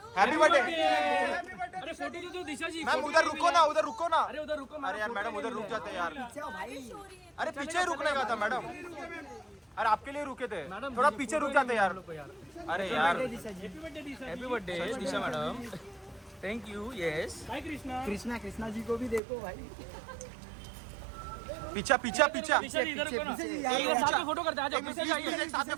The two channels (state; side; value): drops out; left; at 19.2 s